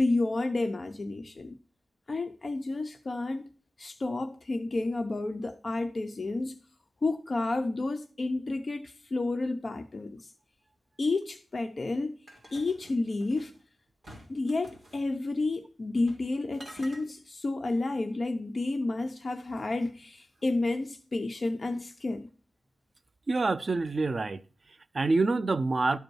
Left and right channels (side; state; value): both; normal; correlation 0.95